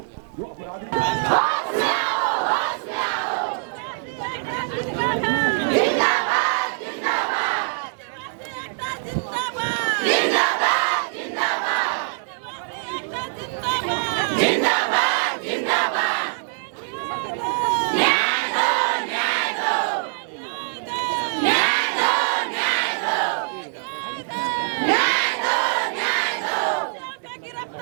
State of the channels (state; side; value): silent; left; 63 dB below the other